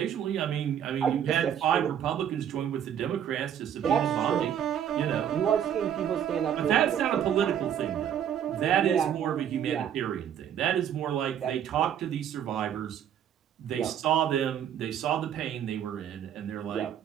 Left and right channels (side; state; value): left; quieter; 9.5 dB